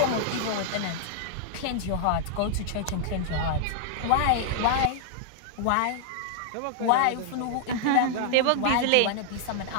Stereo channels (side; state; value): both; different; correlation -0.01